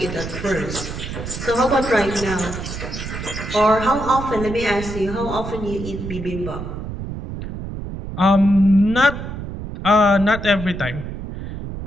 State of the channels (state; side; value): noise; right; rumble, 8 dB below the sound